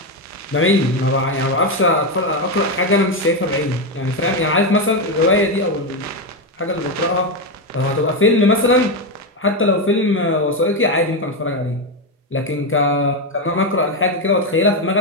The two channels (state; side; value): normal; both; correlation 0.09